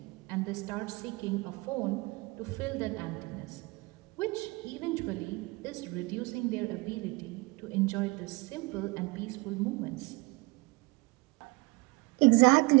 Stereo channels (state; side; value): quieter; left; 24.8 dB